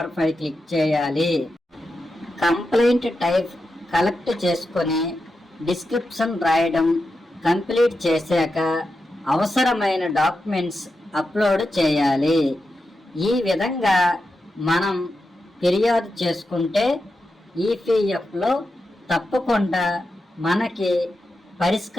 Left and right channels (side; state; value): both; normal; correlation 0.89